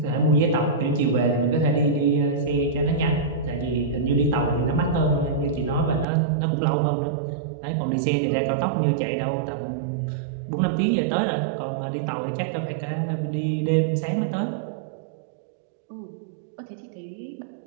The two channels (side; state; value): left; drops out; at 6.1 s